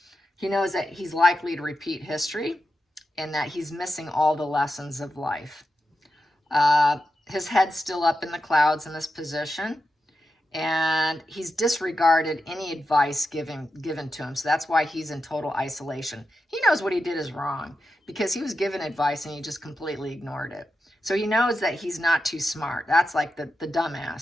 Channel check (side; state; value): both; normal; correlation 0.89